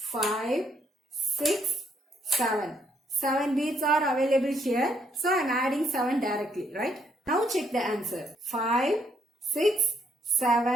6, 7. 7 bits are available here. So I am adding 7 directly, right? Now check the answer. 5, 6,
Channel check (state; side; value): normal; both; correlation 0.71